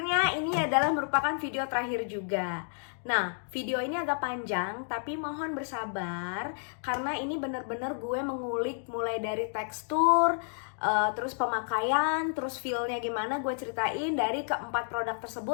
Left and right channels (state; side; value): silent; right; digital silence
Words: ini adalah merupakan video terakhir juga. Nah, video ini agak panjang tapi mohon bersabar karena ini bener-bener gue mengulik mulai dari tekstur, terus pemakaian, terus feel-nya gimana gue ceritain dari keempat produk